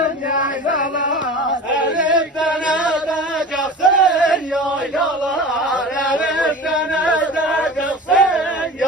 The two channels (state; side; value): normal; both; correlation 0.36